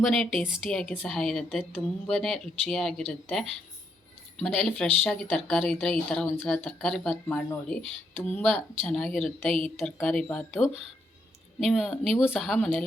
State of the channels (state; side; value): normal; both; correlation 0.77